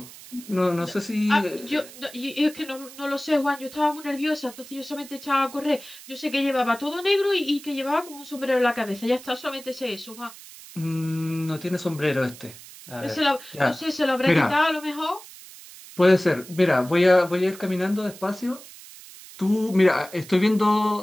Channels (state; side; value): noise; right; hiss, 17 dB below the sound